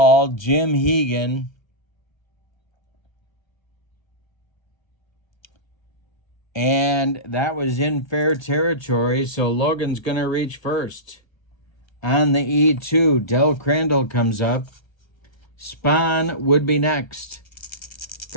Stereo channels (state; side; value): late; right; 1.3 ms